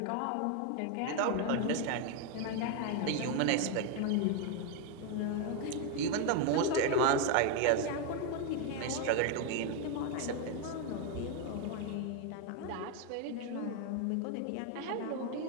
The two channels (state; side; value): different; both; correlation 0.01